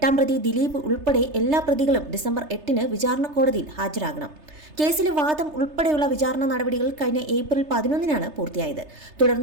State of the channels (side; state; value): left; late; 3.3 ms